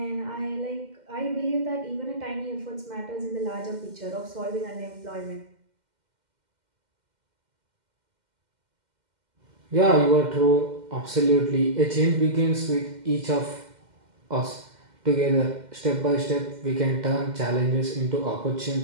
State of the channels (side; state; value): left; late; 2.1 ms